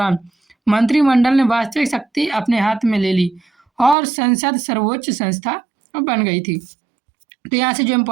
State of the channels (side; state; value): left; drops out; at 4.0 s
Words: मंत्रिमंडल ने वास्तविक शक्ति अपने हाथ में ले ली और संसद सर्वोच्च संस्था बन गई थी। तो यहाँ से जो